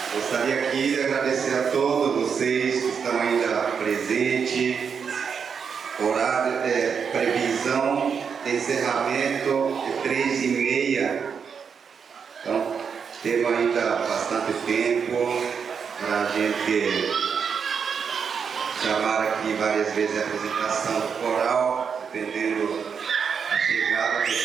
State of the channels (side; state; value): left; quieter; 6.5 dB